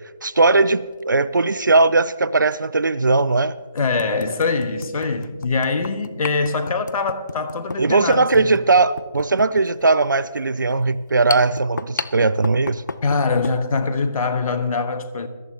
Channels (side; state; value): both; inverted; correlation -0.66